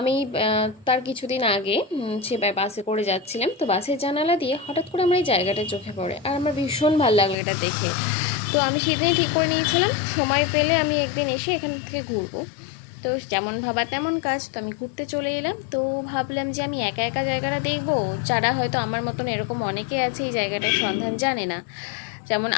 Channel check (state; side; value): drops out; right; at 7.4 s